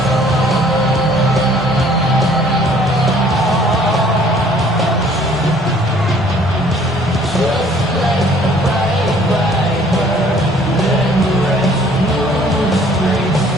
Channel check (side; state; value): both; normal; correlation 0.57